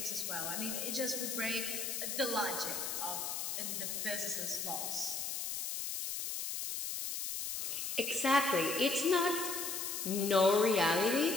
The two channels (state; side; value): noise; left; hiss, 3 dB below the sound